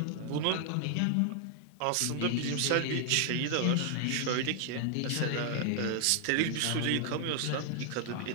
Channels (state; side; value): different; both; correlation 0.00